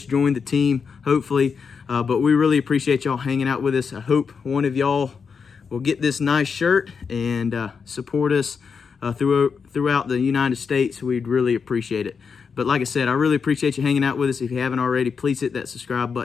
joined the team, hopefully. But we really appreciate y'all hanging out with us. I hope one of y'all will get this nice shirt and support us throughout the United States. We'd really appreciate it. But like I said, I really appreciate you hanging out with us. If you haven't already, please hit that subscribe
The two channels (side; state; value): right; quieter; 5.8 dB